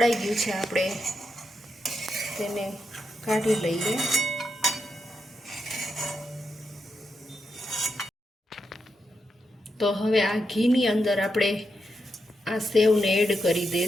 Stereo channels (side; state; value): both; normal; correlation 0.84